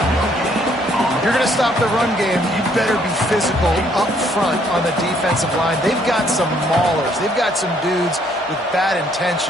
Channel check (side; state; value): both; normal; correlation 0.66